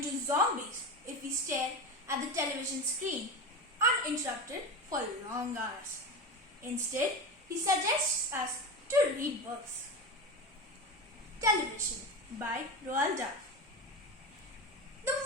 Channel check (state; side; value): normal; both; correlation 0.22